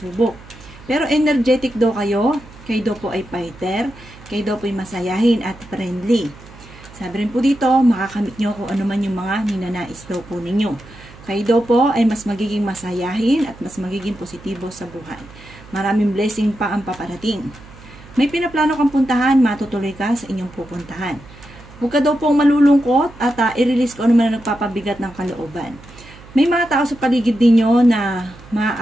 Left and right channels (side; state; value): right; noise; hum, 20 dB below the sound